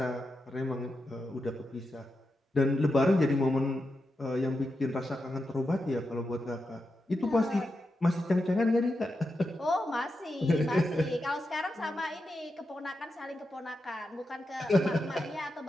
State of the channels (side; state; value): both; normal; correlation 0.88